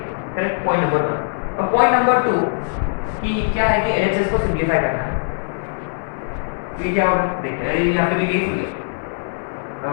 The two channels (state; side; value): silent; right; digital silence